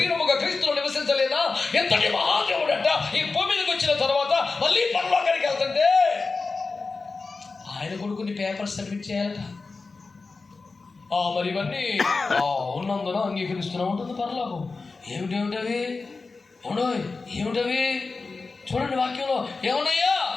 క్రీస్తులో నివసించలేదా? ఎంతటి మహాదేవుడంట. ఈ భూమి మీదకి వచ్చిన తర్వాత మళ్ళీ పరలోకానికి వెళ్తుంటే ఆయన కొడుకుని పేపర్స్ సబ్మిట్ చేయాలట. మరి ఇవన్నీ ఉన్నందున అంగీకరిస్తున్నా ఉంటుంది పరలోకం. ఏమిటవి? చూడండి వాక్యంలో ఏమున్నాయా?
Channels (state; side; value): quieter; right; 4.0 dB